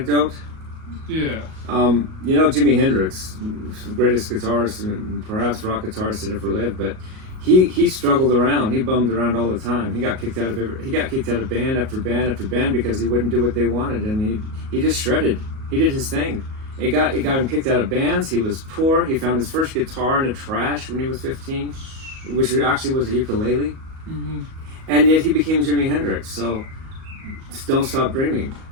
Yeah. You know, Jimi Hendrix, the greatest guitarist and perhaps rock guitarist that ever lived, but he struggled around. He bummed around all the time. He got kicked out of band after band after band because he wouldn't do what they wanted, and he just shredded. He did his thing. It got him kicked out of bands. He was poor. He found his first guitar in the trash when he was 15, which actually was a ukulele. Mm-hmm. And yet he became Jimi Hendrix. So don't stop dreaming.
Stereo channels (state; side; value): late; left; 38 ms